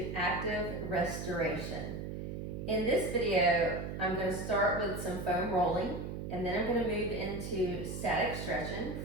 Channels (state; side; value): noise; right; hum, 6 dB below the sound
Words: Active Restoration. In this video, I'm going to start with some foam rolling and then I'm going to move into static stretching.